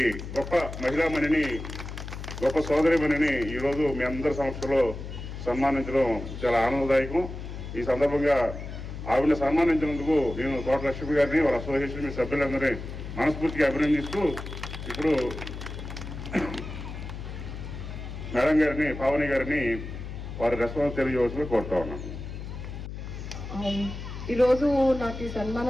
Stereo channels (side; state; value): left; noise; hum, 9 dB below the sound